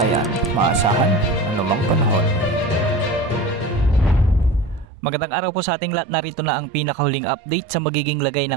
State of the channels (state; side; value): drops out; left; at 4.9 s